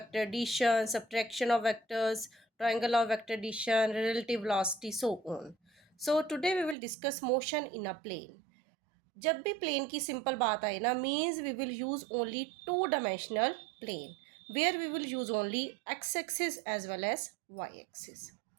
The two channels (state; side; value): drops out; left; at 6.8 s